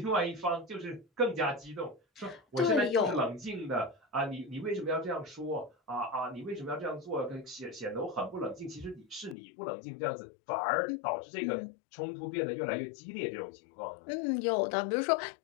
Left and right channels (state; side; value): drops out; right; at 9.3 s